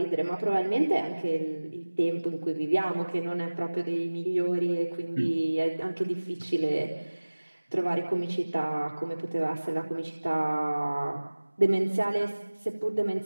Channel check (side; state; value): both; inverted; correlation -1.00